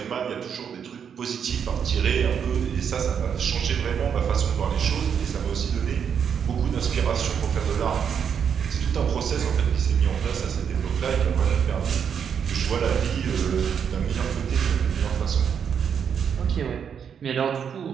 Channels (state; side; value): quieter; left; 7.5 dB